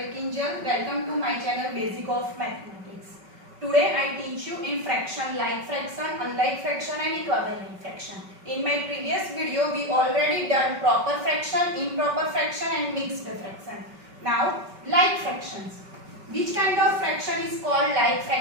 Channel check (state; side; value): late; left; 5.3 ms